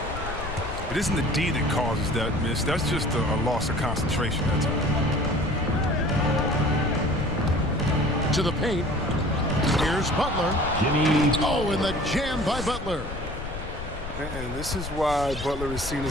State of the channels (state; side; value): noise; left; rumble, 8 dB below the sound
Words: It isn't the D that causes that miss. That's just a loss of concentration at times. To the paint. Here's Butler. Jimmy. Oh, and the jam by Butler. And this is why Butler is seen